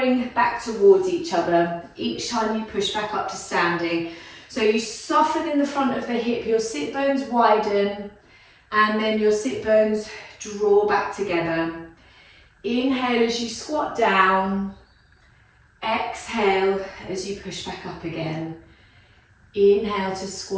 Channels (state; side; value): identical; both; correlation 1.00